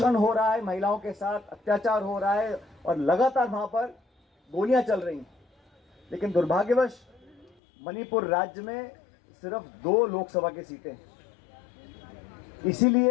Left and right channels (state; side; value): drops out; right; at 7.6 s